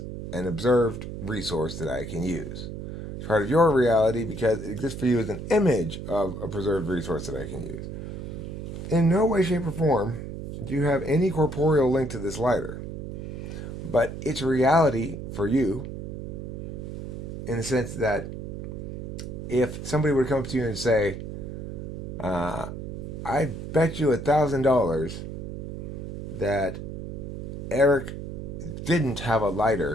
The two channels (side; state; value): right; noise; hum, 7 dB below the sound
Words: an observed resource that I can use. It's part of your reality because it exists for you as an image of a preserved resource that I can use. In no way, shape, or form do you have any corporeal link to this lighter. But it's reality for you in the sense that if somebody would come up to you and say, I bet you $1,000 that Eric didn't have a